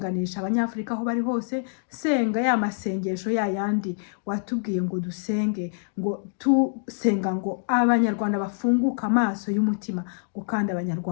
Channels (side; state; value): right; silent; digital silence